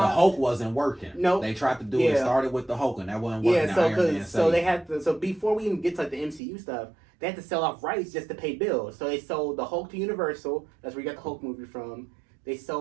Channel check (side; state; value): left; drops out; at 6.4 s